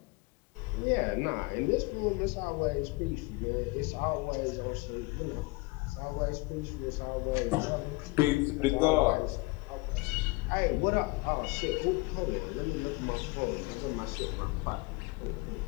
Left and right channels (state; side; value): quieter; right; 24.2 dB